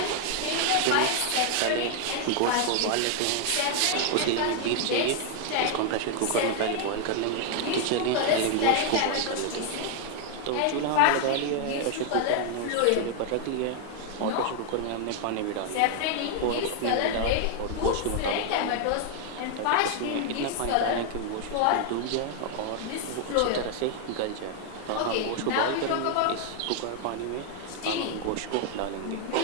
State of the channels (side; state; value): both; different; correlation 0.00